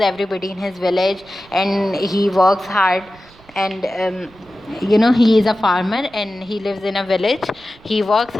everybody in his village and he works hard. And he is a farmer and he lives in a village. He works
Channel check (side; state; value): right; noise; rumble, 26 dB below the sound